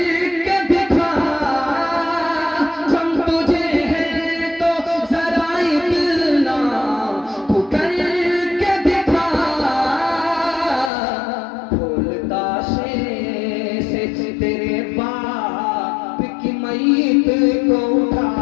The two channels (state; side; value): drops out; right; at 10.9 s